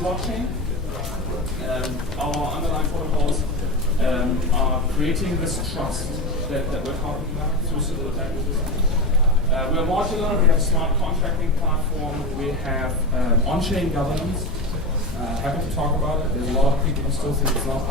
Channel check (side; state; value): left; noise; rumble, 10 dB below the sound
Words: Our underlying protocols are creating this trust that we're talking about through civil attack resistance. We are modular, we have a smart contracting platform, we have on-chain governance. Happy to talk about it. There's a lot of people who still think it's not